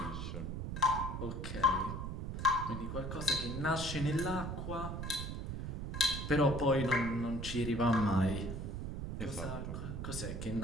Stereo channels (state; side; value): noise; right; rumble, 5 dB below the sound